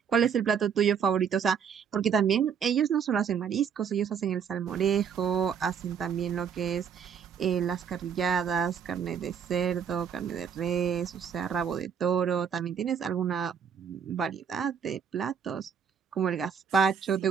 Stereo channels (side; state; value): left; quieter; 7.3 dB